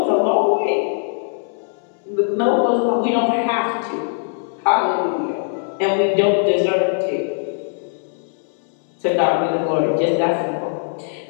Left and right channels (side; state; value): right; silent; 65 dB below the other